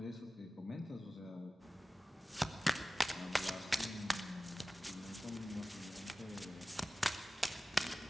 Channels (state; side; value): normal; both; correlation 0.96